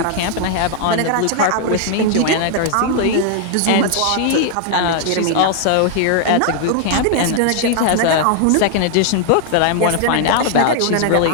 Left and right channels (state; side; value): different; both; correlation 0.00